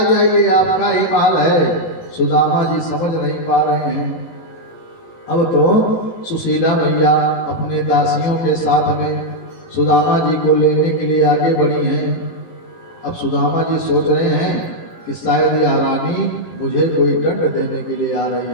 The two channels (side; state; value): right; late; 18 ms